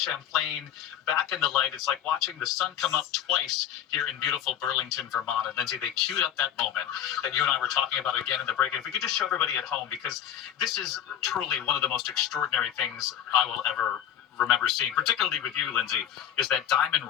back in the light. It's like watching the sun come up twice here in beautiful Burlington, Vermont. And Lindsay, they queued up that moment that you and I were talking about again in the break. And if we could just show everybody at home, because this is truly one of the most extraordinary things I will ever remember seeing, particularly with you, Lindsay, is that diamond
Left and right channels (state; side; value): quieter; right; 10.3 dB